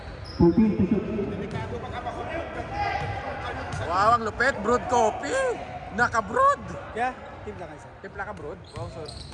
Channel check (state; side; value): identical; both; correlation 1.00